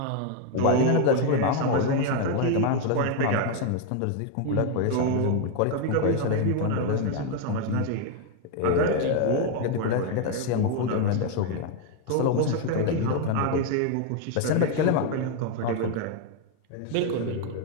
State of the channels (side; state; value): both; different; correlation 0.01